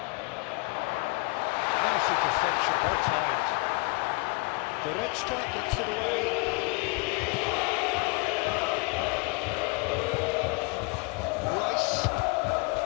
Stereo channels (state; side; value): quieter; right; 30.7 dB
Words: Nice interception, well timed. Goretzka gets it away. Rice.